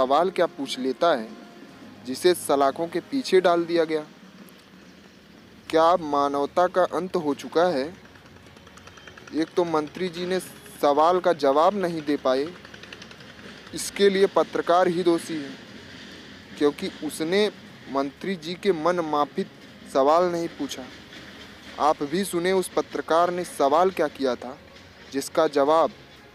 क्या पूछ लेता है, जिसे सलाखों के पीछे डाल दिया गया। क्या अब मानवता का अंत हो चुका है? एक तो मंत्री जी ने सवाल का जवाब नहीं दे पाए, इसके लिए पत्रकार ही दोषी है, क्योंकि उसने मंत्री जी के मन माफिक सवाल नहीं पूछा। आप भी सुने उस पत्रकार ने सवाल क्या किया था, जिसका जवाब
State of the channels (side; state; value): both; identical; correlation 1.00